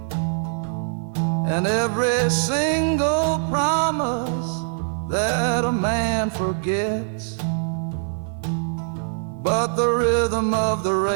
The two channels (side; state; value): left; silent; digital silence